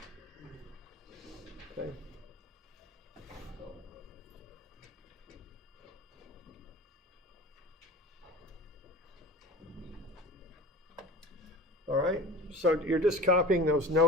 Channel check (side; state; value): both; normal; correlation 0.36